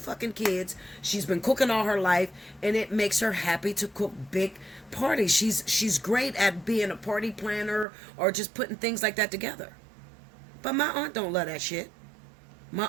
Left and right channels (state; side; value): drops out; left; at 7.9 s